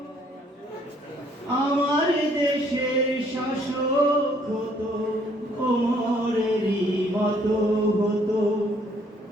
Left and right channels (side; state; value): both; normal; correlation 0.64